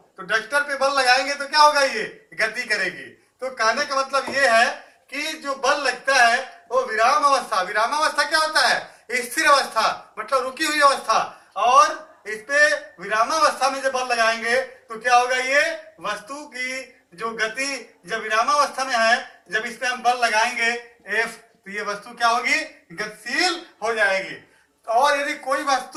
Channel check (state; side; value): identical; both; correlation 1.00